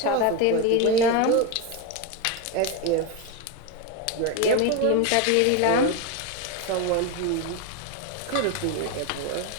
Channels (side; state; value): both; different; correlation 0.04